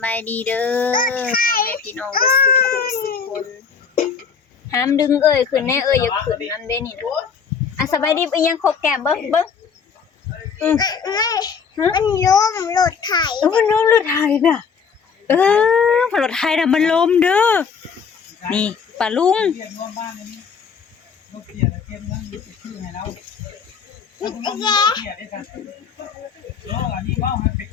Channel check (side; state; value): right; quieter; 6.2 dB